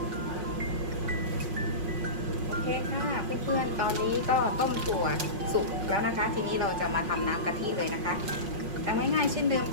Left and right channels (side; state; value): left; late; 5.5 ms